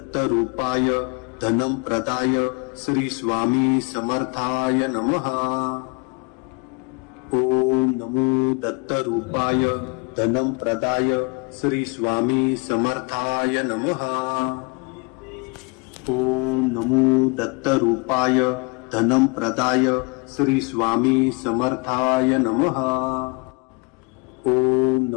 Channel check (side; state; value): right; quieter; 31.5 dB